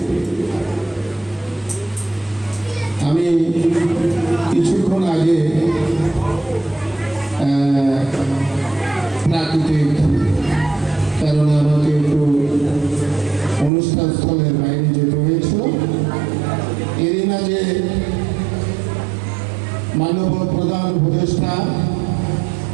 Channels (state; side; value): drops out; left; at 13.7 s